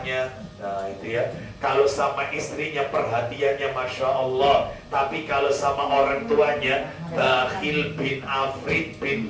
Nah itu ya. Kalau sama istrinya perhatiannya Masya Allah, tapi kalau sama orang tuanya bakhil bin afrit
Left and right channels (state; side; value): identical; both; correlation 1.00